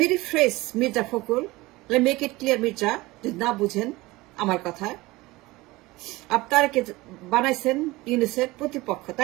me rephrase Mirza Fakhrul, let me make it clear Mirza, যদি না বুঝেন আমার কথা। আপনাকে বানাইছেন ইউনূসের প্রতিপক্ষ,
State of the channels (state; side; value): quieter; left; 20.6 dB